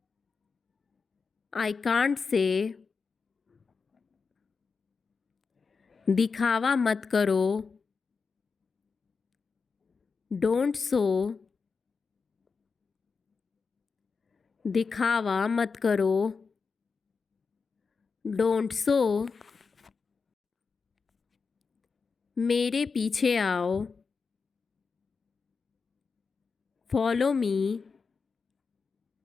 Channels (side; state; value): right; quieter; 5.0 dB